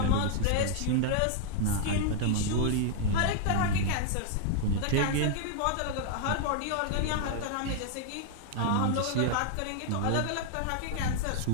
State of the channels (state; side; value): different; both; correlation 0.00